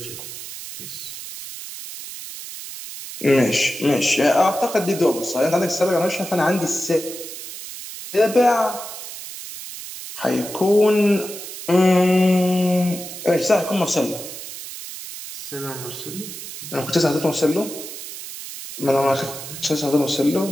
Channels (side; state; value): right; noise; hiss, 11 dB below the sound